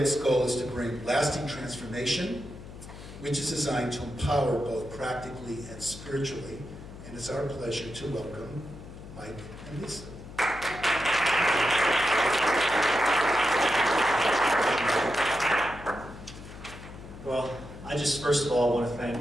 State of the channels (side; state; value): left; noise; hum, 14 dB below the sound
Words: goal is to bring lasting transformation, which is designed to empower both practically and spiritually. And it's our pleasure to welcome Mike and Lisa. Well, I just first of all want to thank